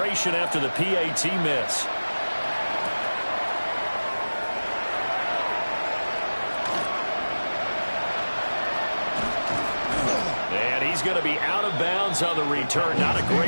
after the PAT miss. And he's going to be out of bounds on the return. Not a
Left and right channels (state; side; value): inverted; both; correlation -1.00